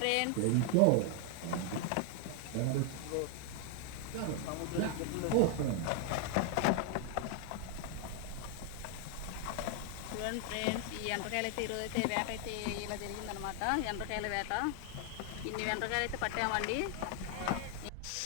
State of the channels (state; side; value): different; both; correlation 0.00